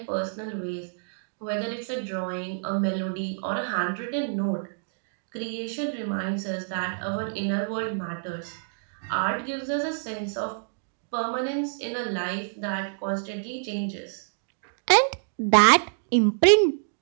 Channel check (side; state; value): left; silent; digital silence